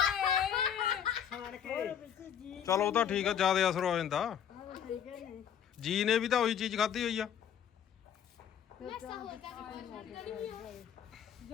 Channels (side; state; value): right; quieter; 8.8 dB